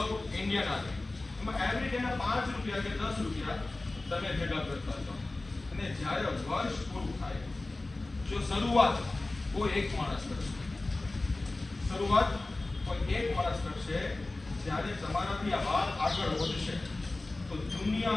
ઇન્ડિયન આર્મી. એમાં એવરી ડેના 5 રૂપિયા કે 10 રૂપિયા તમે ભેગા કરતા છો અને જ્યારે વર્ષ પૂરું થાય જો શરૂઆત કોઈ એક માણસ કરશે, શરૂઆત કોઈ એક માણસ કરશે, જ્યારે તમારાથી આ વાત આગળ વધશે તો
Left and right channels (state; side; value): quieter; right; 3.0 dB